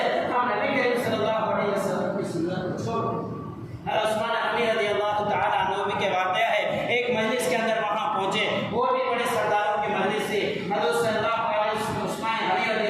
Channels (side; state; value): both; identical; correlation 1.00